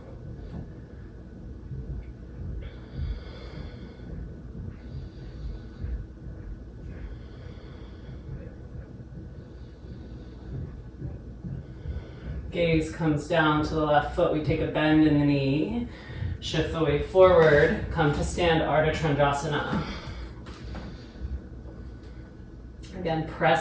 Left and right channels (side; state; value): both; identical; correlation 1.00